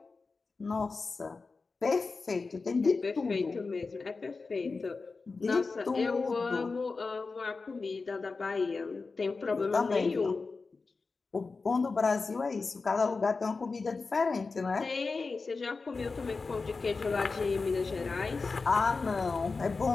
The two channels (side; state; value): right; quieter; 4.2 dB